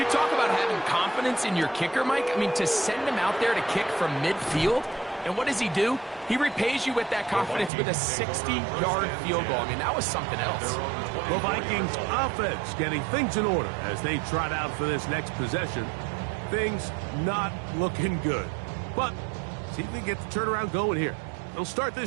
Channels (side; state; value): left; drops out; at 7.7 s